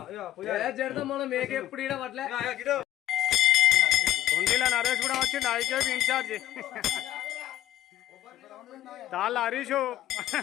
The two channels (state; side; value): quieter; right; 13.2 dB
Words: కుండీలో నరేష్ కూడా వచ్చిండు. ఐకేపీ ఇన్ఛార్జ్ తాళ్ళ హరీషు